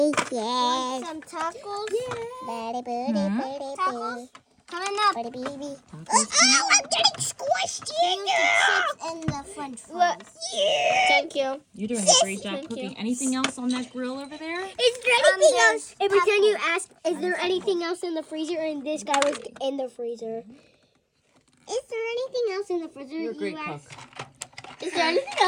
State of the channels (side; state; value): both; identical; correlation 1.00